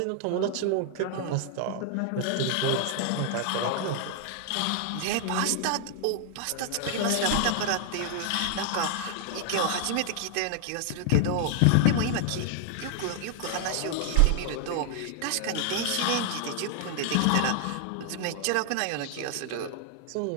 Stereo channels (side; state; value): both; different; correlation 0.00